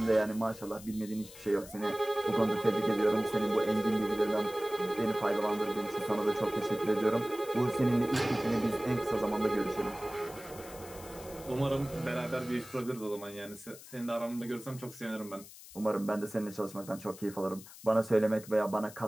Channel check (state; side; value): noise; left; hiss, 17 dB below the sound